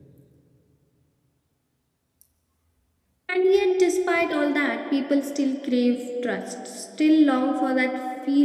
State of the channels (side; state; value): both; identical; correlation 1.00